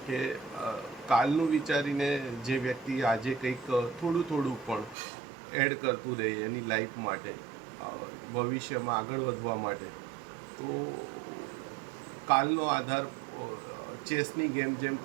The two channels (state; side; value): drops out; left; at 5.0 s